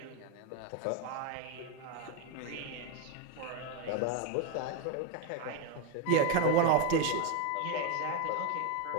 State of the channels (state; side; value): different; both; correlation 0.02